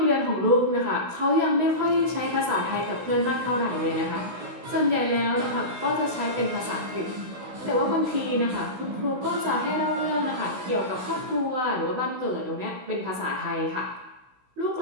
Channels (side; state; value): left; late; 16 ms